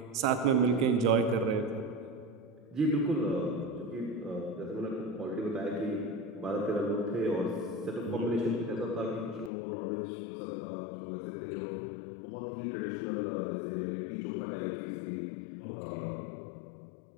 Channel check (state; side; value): drops out; right; at 9.5 s